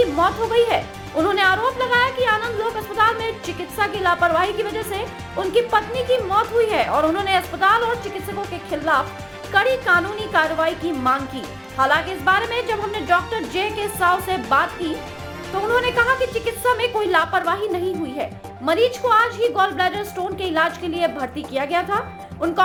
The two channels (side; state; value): both; identical; correlation 1.00